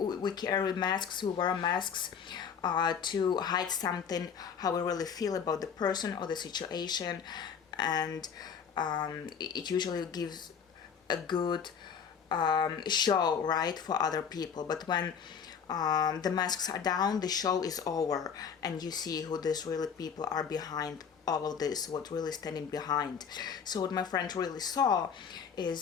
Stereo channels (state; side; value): quieter; right; 7.0 dB